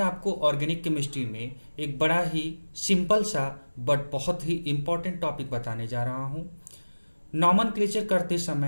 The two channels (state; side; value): inverted; both; correlation -1.00